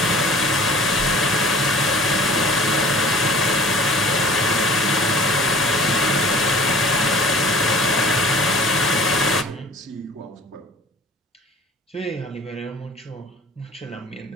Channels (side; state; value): both; normal; correlation 0.46